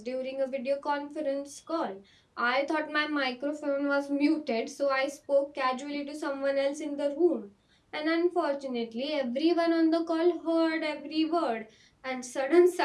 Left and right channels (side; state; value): both; identical; correlation 1.00